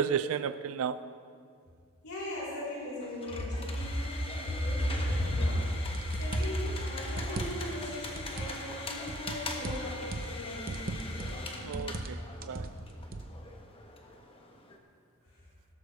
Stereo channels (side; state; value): both; normal; correlation 0.51